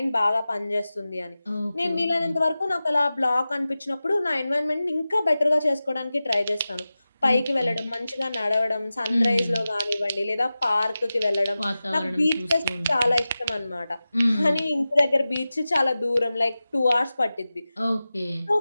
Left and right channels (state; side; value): inverted; both; correlation -0.95